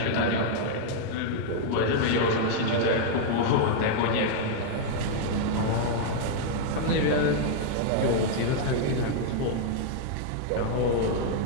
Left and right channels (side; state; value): both; different; correlation -0.01